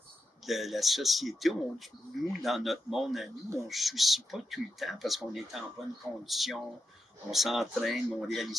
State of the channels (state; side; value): normal; both; correlation 0.87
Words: la société, nous, dans notre monde à nous, on ne se soucie pas tout le temps parce qu'on est en bonne condition, on s'entraîne, mais on ne